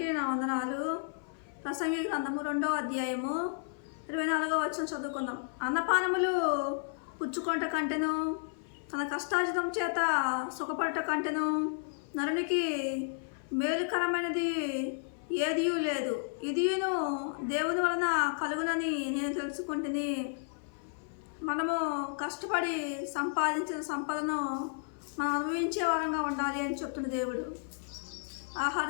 నా వందనాలు. ప్రసంగి గ్రంథము 2వ అధ్యాయము 24వ వచనం చదువుకుందాం. అన్నపానములు పుచ్చుకొనుట కంటెను, తన కష్టార్జితం చేత సుఖపడుట కంటెను నరునికి మేలుకరమైనది ఏదియూ లేదు. ఇదియును దేవుని వలన కలుగునని నేను తెలుసుకుంటుని. మనము కష్టపడి సంపాదించిన సంపదను మనం అనుభవించే వారంగా ఉండాలి అని చెప్తున్న దేవుడు. ఆహార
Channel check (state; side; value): silent; right; 56 dB below the other